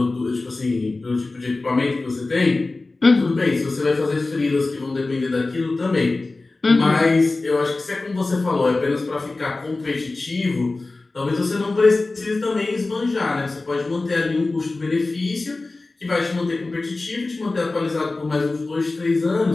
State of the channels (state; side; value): quieter; right; 3.3 dB